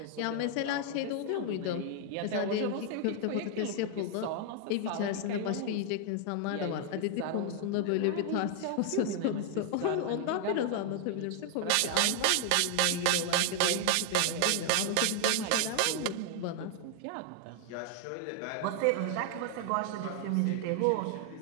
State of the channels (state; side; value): different; both; correlation 0.00